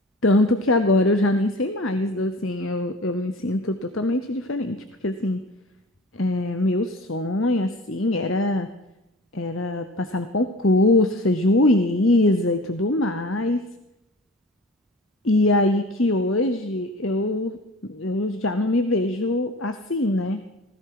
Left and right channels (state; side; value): normal; both; correlation 0.41